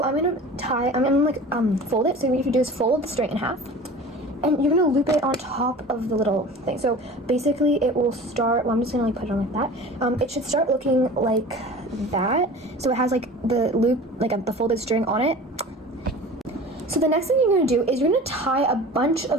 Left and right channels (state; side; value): normal; both; correlation 0.39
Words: I'm gonna like fold it. So what you do is fold the string in half, and you're gonna loop it on top of the little thing. So basically it will start, well, I'm just gonna like put it on like that. It should start looking like that. So it has like the loop, like the folded string on it. So the next thing you're gonna do is you're gonna tie a bunch